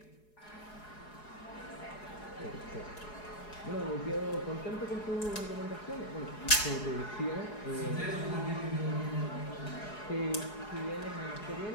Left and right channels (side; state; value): right; late; 4.8 ms